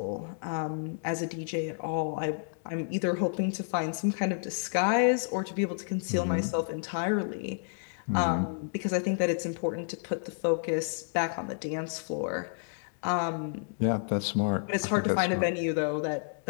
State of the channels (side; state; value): right; silent; digital silence